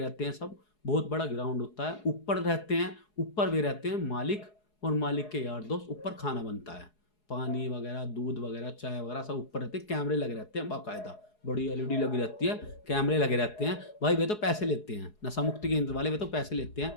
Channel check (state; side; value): late; right; 4.8 ms